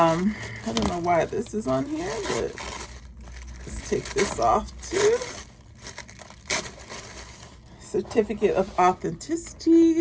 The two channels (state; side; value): identical; both; correlation 1.00